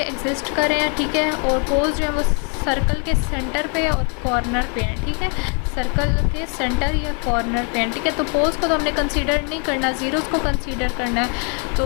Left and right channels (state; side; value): quieter; right; 38.0 dB